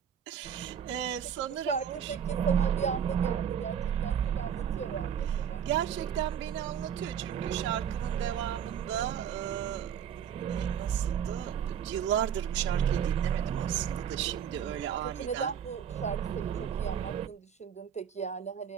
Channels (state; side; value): quieter; left; 8.5 dB